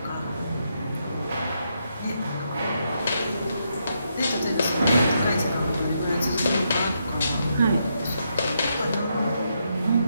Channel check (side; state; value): both; inverted; correlation -0.80